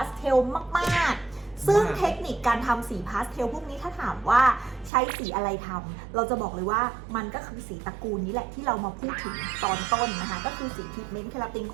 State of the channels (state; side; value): drops out; left; at 4.9 s